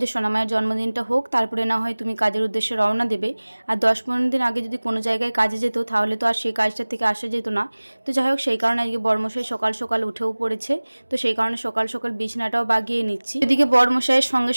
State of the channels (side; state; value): both; inverted; correlation -1.00